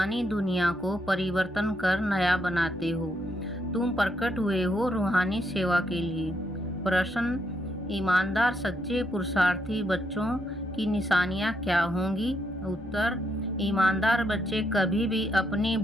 दुनिया को परिवर्तन कर नया बनाते हो। तुम प्रकट हुए हो रूहानी सेवा के लिए। प्रश्न, ईमानदार सच्चे पुरुषार्थी बच्चों की निशानियां क्या होंगी? उत्तर, ईमानदार बच्चे कभी भी अपनी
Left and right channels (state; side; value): normal; both; correlation 0.77